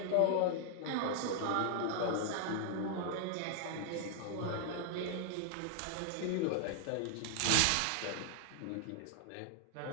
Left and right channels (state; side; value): different; both; correlation 0.00